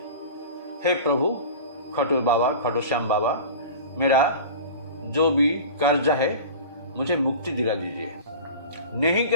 हे प्रभु खाटू श्याम बाबा, मेरा जो भी कर्ज है मुझे मुक्ति दिला दीजिए। नहीं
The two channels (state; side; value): inverted; both; correlation -0.36